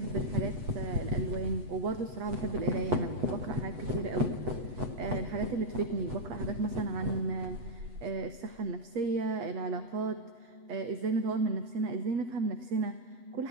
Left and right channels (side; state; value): left; late; 8.1 ms